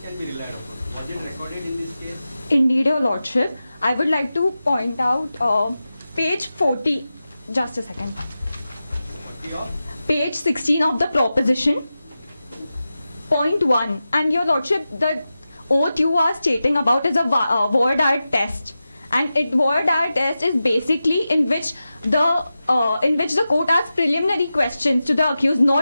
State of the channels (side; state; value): both; inverted; correlation -0.93